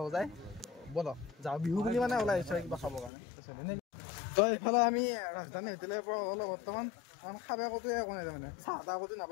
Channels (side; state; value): right; drops out; at 3.1 s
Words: যায় ব'লক যাওঁ বিহু বুলি মানে ওলাই আহিছোঁ কিবা খাবৰ কাৰণে তো এইফালে আমি ৰাজধানী হোটেলৰ পৰা ওলালোঁ বৰ্তমান খাব ক'তো একো নাই তাৰমানে চাহ তাহ ক'তো